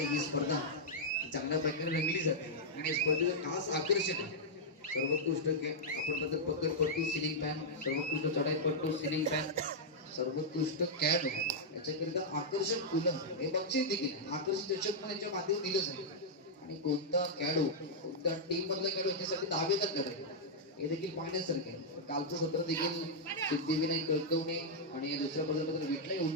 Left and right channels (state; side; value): normal; both; correlation -0.07